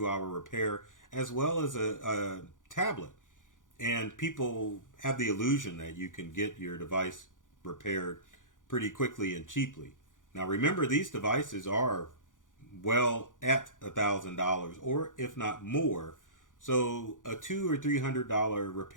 hour repair, as well as a tablet. And people have the illusion that you can get your device repaired pretty quickly and cheaply. Now remember, these devices are well at $1,000, or if not more. So a $200 or $300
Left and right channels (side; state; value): right; late; 0.88 ms